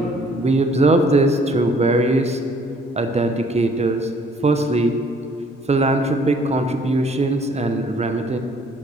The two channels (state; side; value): normal; both; correlation 0.60